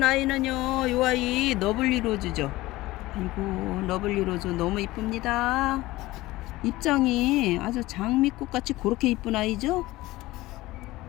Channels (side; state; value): right; quieter; 18.5 dB